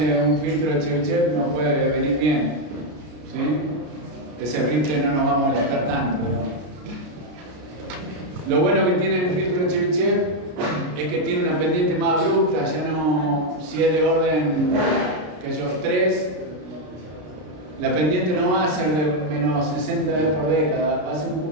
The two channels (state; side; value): late; left; 33 ms